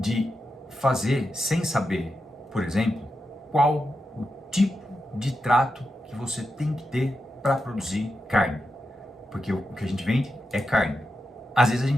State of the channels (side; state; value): both; normal; correlation 0.88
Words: fazer sem saber, por exemplo, qual o tipo de trato que você tem que ter para produzir carne. Porque o que a gente vende é carne. Às vezes a